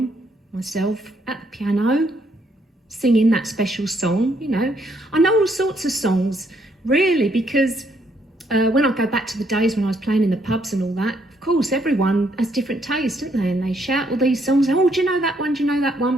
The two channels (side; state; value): both; normal; correlation 0.71